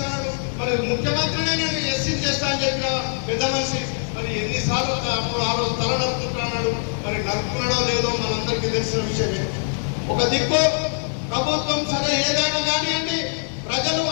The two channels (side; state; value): right; silent; 64 dB below the other